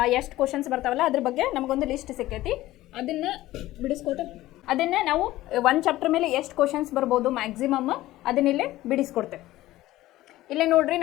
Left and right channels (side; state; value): right; quieter; 16.2 dB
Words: ಎಷ್ಟು ಕ್ವಶನ್ಸ್ ಬರ್ತಾವಲ್ಲ ಅದ್ರ ಬಗ್ಗೆ ನಮಗೊಂದು ಲಿಸ್ಟ್ ಸಿಕ್ಕೈತಿ. ಅದನ್ನ ನಾವು ಒಂದು ಚಾಪ್ಟರ್ ಮೇಲೆ ಎಷ್ಟು ಕ್ವಶನ್ಸ್ ಬರ್ಬೋದು ಮ್ಯಾಕ್ಸಿಮಮ್ ಅದನ್ನಿಲ್ಲೇ ಬಿಡಿಸ್ಕೊಡ್ತೇವೆ. ಇಲ್ಲೇ ನೋಡ್ರಿ,